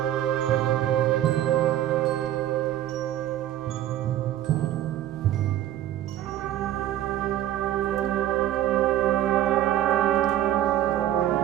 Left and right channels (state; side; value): quieter; left; 12.7 dB